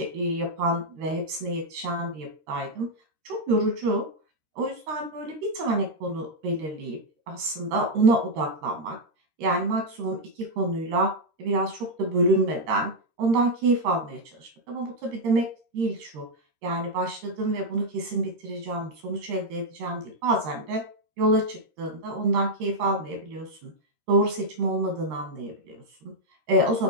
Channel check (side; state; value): left; late; 13 ms